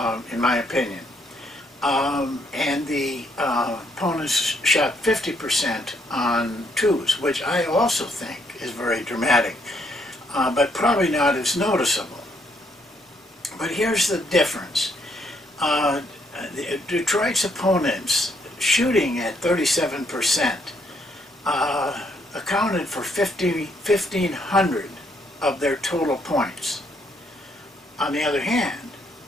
in my opinion. And the opponents shot 50% on 2s, which I also think is very dramatic, but probably not as noticeable. But here's the difference. Detroit's opponents shooting at 37% accounted for 1,500 of their total points. On the other hand,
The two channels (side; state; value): both; normal; correlation 0.72